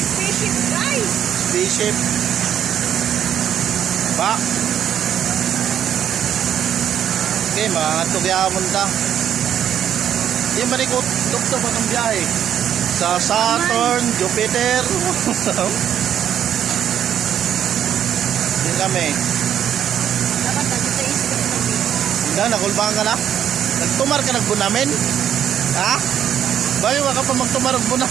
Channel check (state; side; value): quieter; left; 9.7 dB